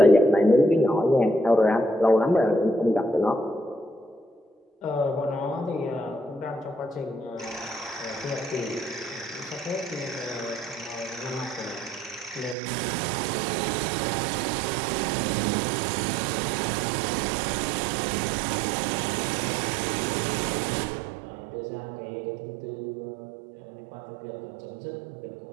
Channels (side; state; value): left; drops out; at 12.6 s